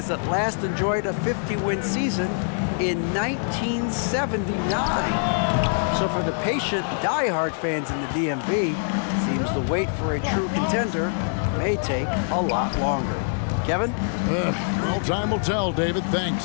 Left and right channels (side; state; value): right; silent; digital silence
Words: that last enjoyed a 50-win season in 1979. So for the patient, diehard fans in the DMV, seems the wait for a true contender may take a lot longer. Kevin? Well, time will tell, David.